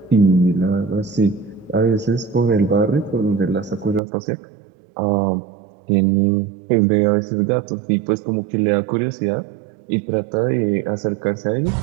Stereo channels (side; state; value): left; drops out; at 4.0 s